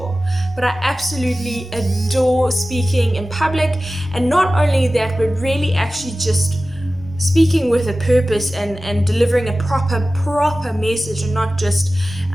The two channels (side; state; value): both; normal; correlation 0.96